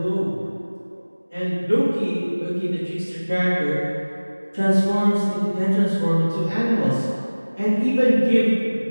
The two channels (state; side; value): inverted; both; correlation -1.00